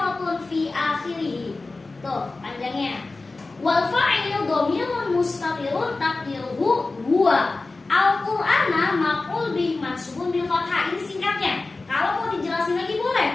fi akhirih. Tuh, panjangnya. Wal fa'ilu dhamirun mustatirun taqdiruhu huwa. Al-Qur'ana maf'ul bih mansubun bil fathah. Ini singkatnya. Kalau mau dijelasin lagi boleh.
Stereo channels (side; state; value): right; quieter; 3.5 dB